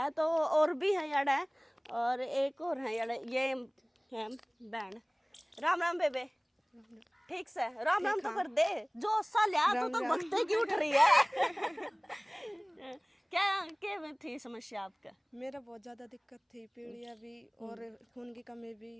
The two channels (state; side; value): identical; both; correlation 1.00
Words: तो और भी है यार है, और एक और है यार, ये है बहन। राम राम बेबे, ठीक से? राम राम तो कर दे, जो सा लिया तो बखते की उठ रही है। क्या थी समस्या आपका? मेरा बहुत ज़्यादा दिक्कत थी, पीलिया भी और खून की कमी